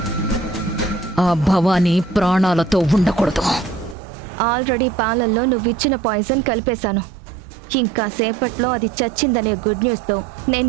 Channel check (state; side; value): drops out; left; at 4.0 s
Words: ఆ భవానీ ప్రాణాలతో ఉండకూడదు. ఆల్రెడీ పాలల్లో నువ్విచ్చిన పాయిజన్ కలిపేశాను. ఇంకా సేపట్లో అది చచ్చిందనే గుడ్ న్యూస్తో నేను